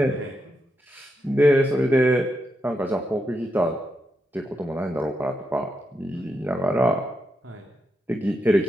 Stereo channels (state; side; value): normal; both; correlation 0.84